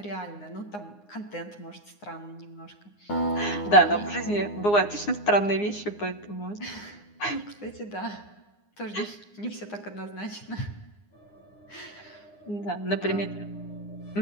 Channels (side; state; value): right; late; 9.7 ms